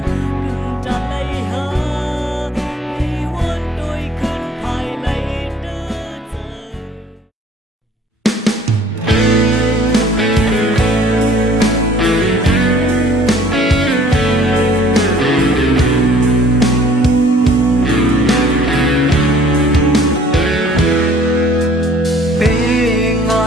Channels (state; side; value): normal; both; correlation 0.56